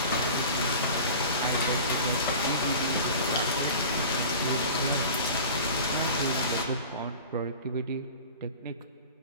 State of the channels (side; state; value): both; inverted; correlation -0.38